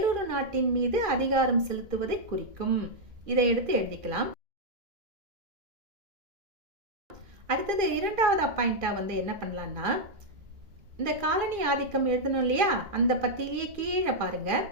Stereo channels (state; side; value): late; left; 2.4 ms